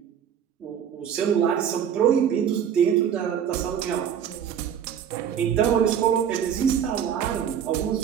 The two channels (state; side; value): quieter; left; 8.7 dB